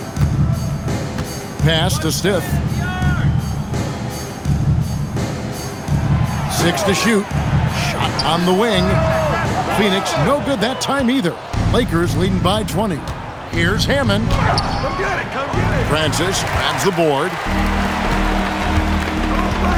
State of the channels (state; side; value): identical; both; correlation 1.00